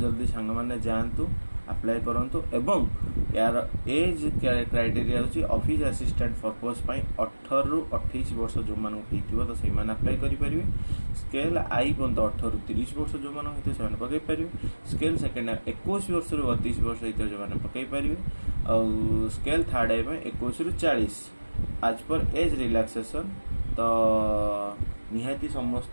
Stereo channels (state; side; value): inverted; both; correlation -1.00